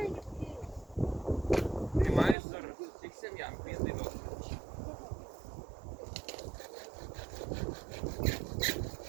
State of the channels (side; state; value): left; drops out; at 2.4 s